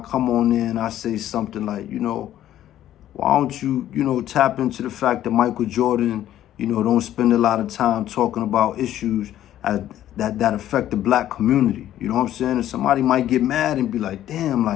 on there and I say something like, why don't you, tap into the fact that Michael Jordan, don't spend a lot of time talking about issues that affect the black community. You know what I'm saying? And somebody might get mad and be like, damn,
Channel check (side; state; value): right; quieter; 12.3 dB